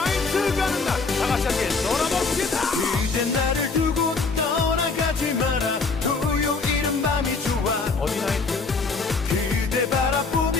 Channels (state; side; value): quieter; right; 4.2 dB